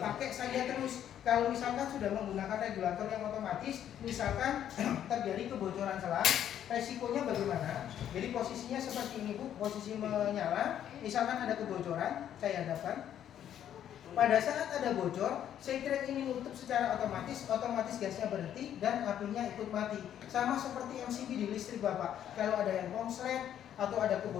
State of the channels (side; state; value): right; quieter; 10.3 dB